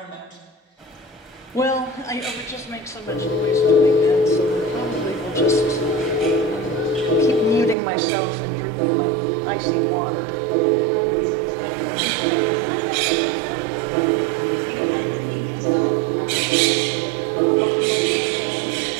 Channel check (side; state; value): left; drops out; at 7.8 s